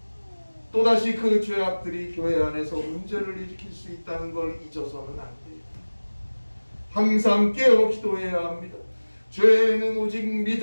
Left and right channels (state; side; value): inverted; both; correlation -1.00